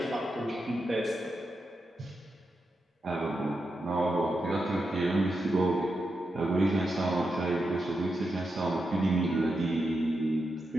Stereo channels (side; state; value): both; normal; correlation 0.87